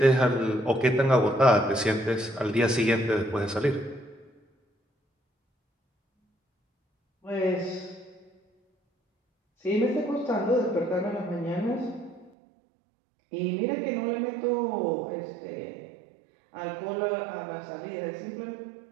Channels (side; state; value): left; drops out; at 12.3 s